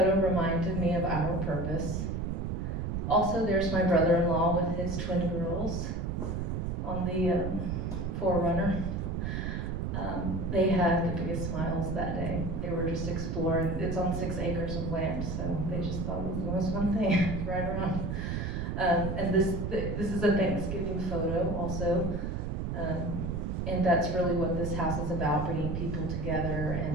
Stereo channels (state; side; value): noise; right; rumble, 2 dB below the sound